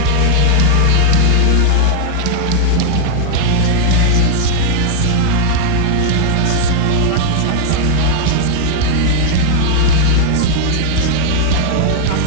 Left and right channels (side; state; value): both; different; correlation -0.01